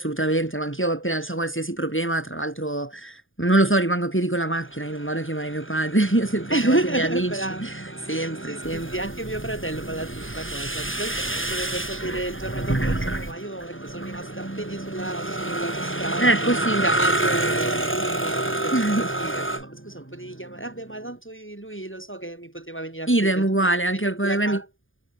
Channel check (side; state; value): right; late; 0.58 ms